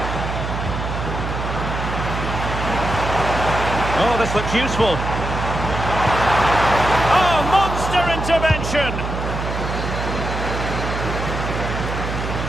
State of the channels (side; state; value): right; noise; hum, 4 dB below the sound